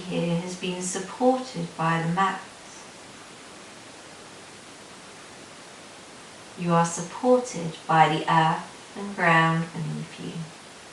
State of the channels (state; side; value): identical; both; correlation 1.00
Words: here has been supported by the mat. You are supported by the earth and ground beneath you.